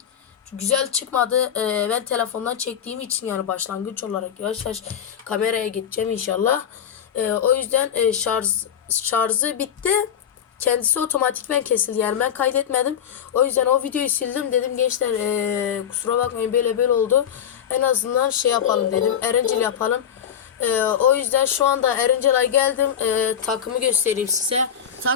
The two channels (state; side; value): quieter; right; 8.8 dB